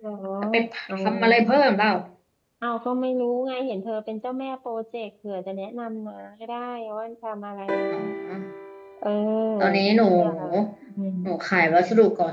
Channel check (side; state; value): both; identical; correlation 1.00